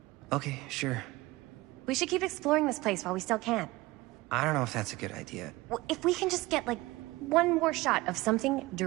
Okay, sure. We should keep exploring this place while we still can. I don't know if that's a good idea. If we can just get, like, one more shot of something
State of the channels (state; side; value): quieter; left; 20.3 dB